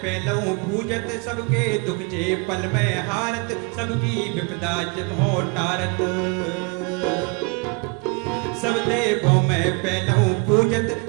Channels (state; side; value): quieter; left; 33.1 dB